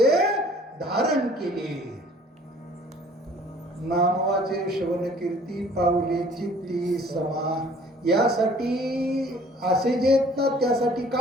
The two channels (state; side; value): normal; both; correlation 0.54